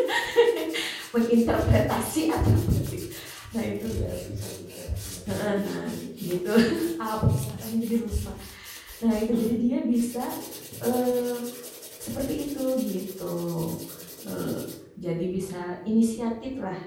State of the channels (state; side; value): identical; both; correlation 1.00